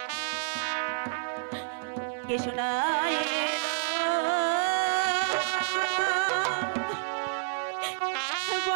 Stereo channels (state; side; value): silent; left; digital silence